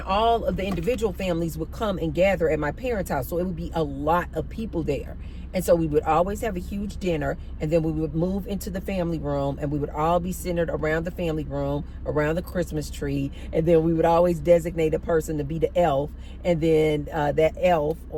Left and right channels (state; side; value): identical; both; correlation 1.00